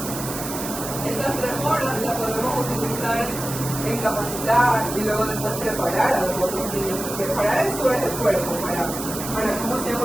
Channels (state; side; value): noise; right; hiss, 8 dB below the sound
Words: Esas 3 horas las podemos utilizar en capacitar y luego después preparar a los otros niños, porque para eso es el cuerpo, para cómo se van a